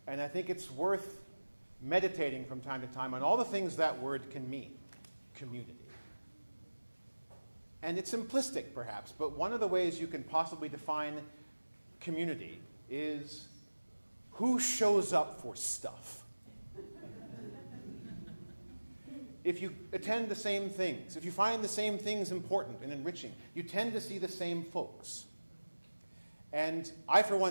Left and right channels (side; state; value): both; inverted; correlation -1.00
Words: And I think it's worth meditating from time to time on all the things that word can mean. Community. And it's simplistic, perhaps, but one of the ways you can possibly define community is who shows up for stuff. If you attend the same things, if you find the same things important and enriching, you tend to see the same folks. And I, for